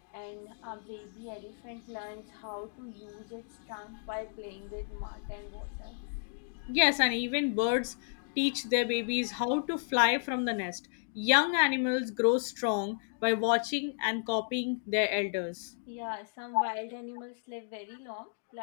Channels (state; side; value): silent; right; digital silence